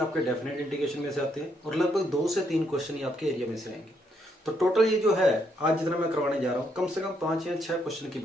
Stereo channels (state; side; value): normal; both; correlation 0.74